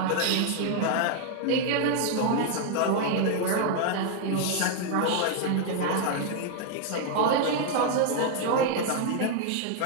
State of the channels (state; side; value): different; both; correlation 0.00